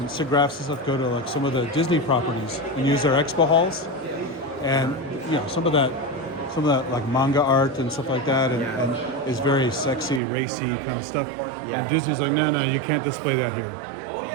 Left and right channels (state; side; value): drops out; left; at 10.2 s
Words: and stuff go to like some of the Disney properties and use their expo halls, and some of that like manga art and stuff like that, and is very sexy, racy kind of stuff. Yeah. And Disney's like, no, you can't display that here.